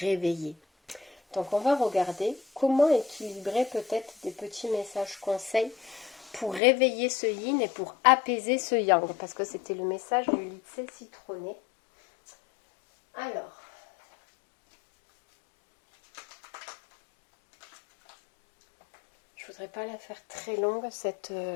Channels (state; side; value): drops out; right; at 6.6 s